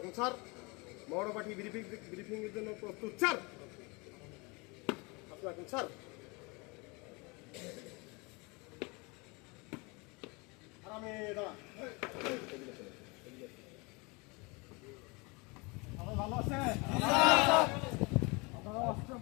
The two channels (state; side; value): quieter; right; 28.0 dB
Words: স্যার মৌরপাঠি ব্রিফিং এর জন্য প্রস্তুত স্যার। স্যার আরামে দাঁড়া। ভালো আছে?